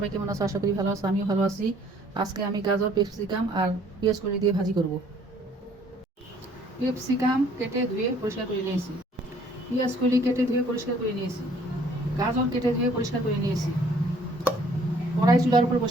কেমন আছো? আশা করি ভালো আছো। আমিও ভালো আছি। আজকে আমি গাজর, ক্যাপসিকাম আর পেঁয়াজ কলি দিয়ে ভাজি করব। ক্যাপসিকাম কেটে ধুয়ে পরিষ্কার করে নিয়েছি, পেঁয়াজ কলি কেটে ধুয়ে পরিষ্কার করে নিয়েছি, গাজর কেটে ধুয়ে পরিষ্কার করে নিয়েছি। কড়াই চুলার উপর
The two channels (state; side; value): normal; both; correlation 0.59